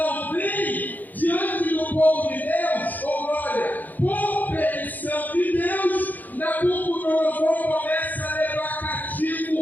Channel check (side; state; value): right; late; 0.083 ms